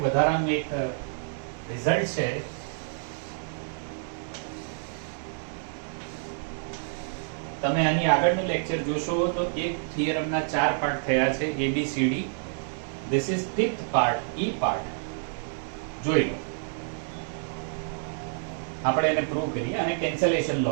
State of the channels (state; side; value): silent; left; digital silence